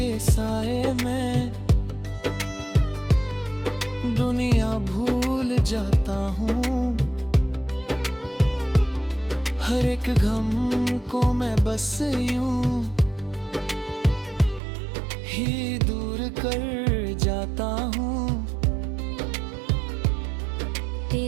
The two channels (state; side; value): drops out; left; at 14.6 s